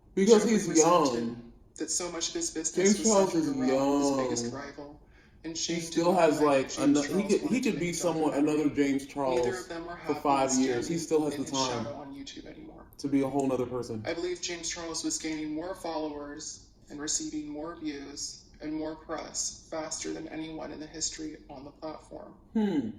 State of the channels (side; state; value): both; identical; correlation 1.00